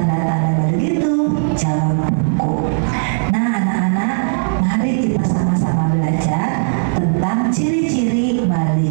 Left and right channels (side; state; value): left; silent; digital silence